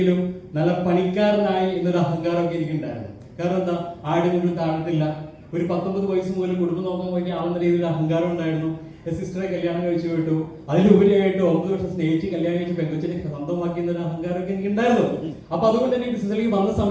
നല്ല പണിക്കാരനായി എന്നൊരു അഹങ്കാരമൊക്കെ എനിക്കുണ്ടായിരുന്നു. കാരണം എന്താ, ആടും കൊണ്ടും താഴത്തില്ല. ഒരു 19 വയസ്സ് മുതൽ കുടുംബം നോക്കാൻ വേണ്ടി ആളുന്ന രീതിയിൽ അഹങ്കാരം ഉണ്ടായിരുന്നു. സിസ്റ്ററെ കല്യാണം കഴിച്ചു വിട്ടു. അതിലുപരിയായിട്ട് 9 വർഷം സ്നേഹിച്ച് കല്യാണം കഴിച്ച് പെങ്കൊച്ചിനെ സ്വന്തമാക്കി എന്നൊരു അഹങ്കാരമൊക്കെ എനിക്കുണ്ടായിരുന്നു. അപ്പൊ അതുകൊണ്ട് തന്നെ ബിസിനസ്സിലേക്ക് വന്ന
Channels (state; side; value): identical; both; correlation 1.00